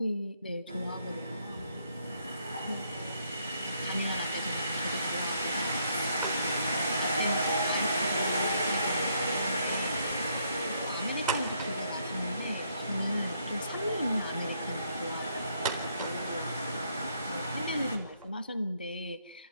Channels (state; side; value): inverted; both; correlation -0.72